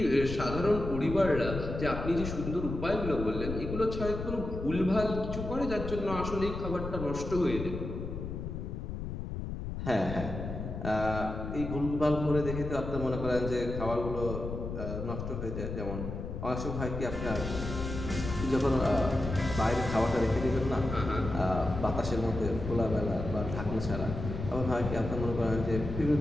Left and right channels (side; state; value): left; noise; rumble, 6 dB below the sound